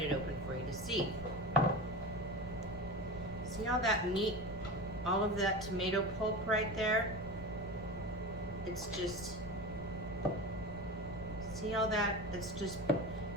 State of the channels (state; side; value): noise; left; rumble, 14 dB below the sound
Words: it open for you to see. See all that meat, all of that tomato pulp right there? It's just, see all that? It's just